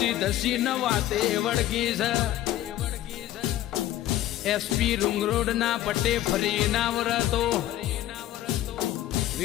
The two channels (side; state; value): right; quieter; 13.6 dB